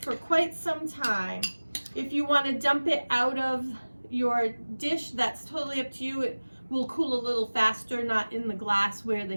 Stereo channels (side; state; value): both; inverted; correlation -1.00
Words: quite some time. If you want to dump it out of your dish, that's totally up to you. It will cool a little faster, not in the glass where the